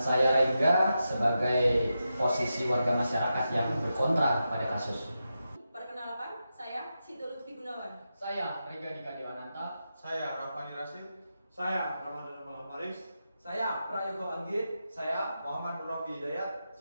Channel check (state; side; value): inverted; both; correlation -0.89